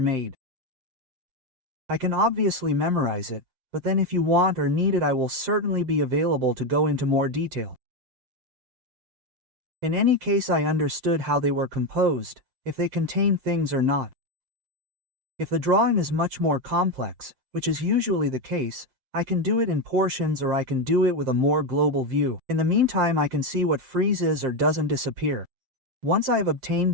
I can obviously memorize it, but then if you want or need it I will certainly be available to go into more detail. In any case I understood how they were composed, if they contain things or not. If the drawing is much more complex, which is usually the case, I can do it in portions or I can do it with a more global view. In the meantime I can see what freezes or doesn't disappear. Once I have obtained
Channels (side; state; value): left; late; 7.6 ms